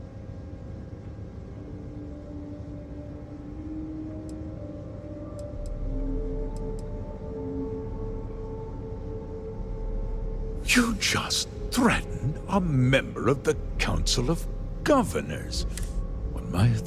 You just threatened a member of the Council of Governors. On my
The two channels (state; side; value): identical; both; correlation 1.00